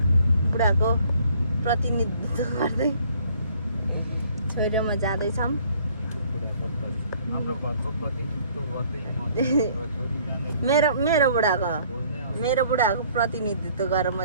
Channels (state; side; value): inverted; both; correlation -0.59